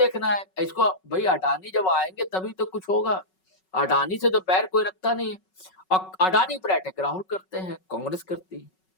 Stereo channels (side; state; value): right; late; 5.4 ms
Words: है इसको। भाई अडानी जब आएंगे तभी तो कुछ होगा। अडानी से तो पैर कोई रखता नहीं है, और अडानी पर अटैक राहुल करते हैं, कांग्रेस करती है।